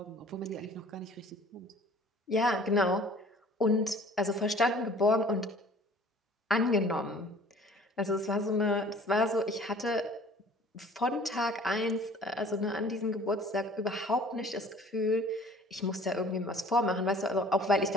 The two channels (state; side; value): normal; both; correlation 0.50